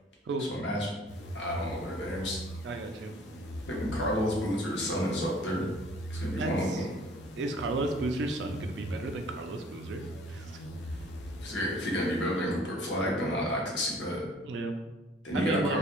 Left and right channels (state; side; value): normal; both; correlation 0.54